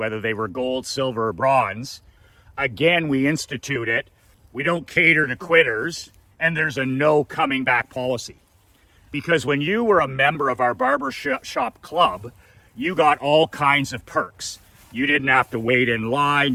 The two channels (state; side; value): identical; both; correlation 1.00